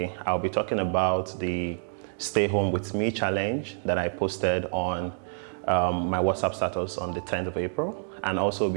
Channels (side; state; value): left; silent; digital silence